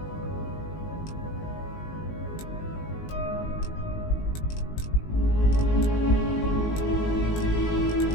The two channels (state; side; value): late; right; 19 ms